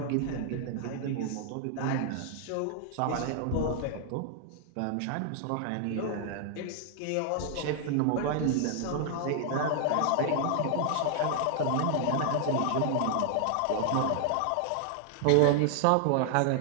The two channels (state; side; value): different; both; correlation 0.00